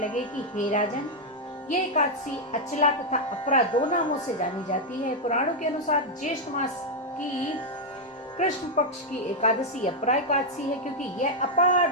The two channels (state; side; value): normal; both; correlation 0.00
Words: कि हे राजन, ये एकादशी अचला तथा अपरा 2 नामों से जानी जाती है। पुराणों के अनुसार ज्येष्ठ मास की कृष्ण पक्ष की एकादशी अपरा एकादशी है, क्योंकि यह